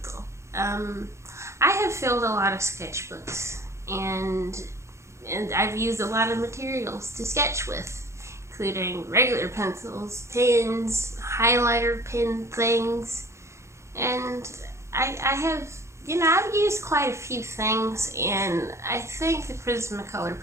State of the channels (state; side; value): late; left; 0.14 ms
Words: I have filled a lot of sketchbooks, and I've used a lot of materials to sketch with, including regular pencils, pens, highlighter pen things, and I have, I've used quite a few things, and I think the Prismacolor